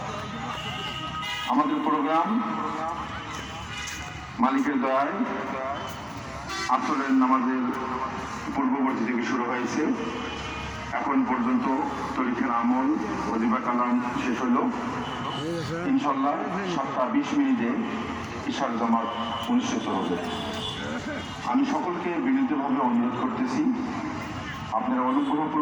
আমাদের প্রোগ্রাম মালিকের দয়ায় আসরের নামাজের পূর্ববর্তী থেকে শুরু হয়েছে। এখন পর্যন্ত তরিকার আমল ওজিফা কালাম শেষ হইল। ইনশাল্লাহ 7:20 ইশার জামাত অনুষ্ঠিত হবে। আমি সকলকে বিনীতভাবে অনুরোধ করতেছি, আপনারা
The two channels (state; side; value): identical; both; correlation 1.00